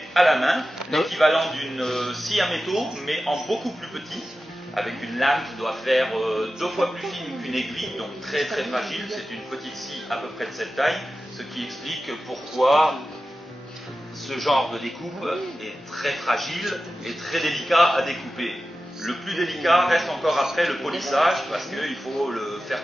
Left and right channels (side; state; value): both; normal; correlation 0.94